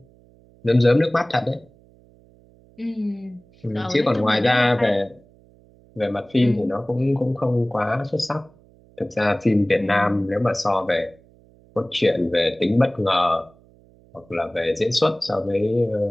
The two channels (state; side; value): noise; right; hum, 28 dB below the sound